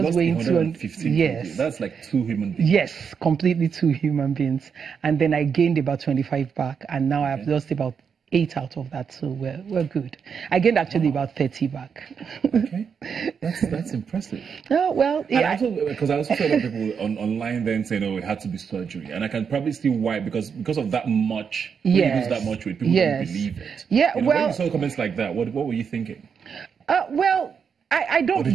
weighing 215. Yes. That's like 2 human beings. Yes, completely 2 human beings. And then I gained about 25 back, and now I've lost about 8 out of that, so we're good. I gained actually about 30 back. Okay, that's impressive. Oh well, yeah. Because I also saw a lot of people online then saying, "Oh, it had to be surgery," and I can probably see why, because of that much. When you lose that much weight, people don't believe it. Yeah, when you saw comments like that, what were you thinking? Well, I don't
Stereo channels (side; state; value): left; quieter; 6.6 dB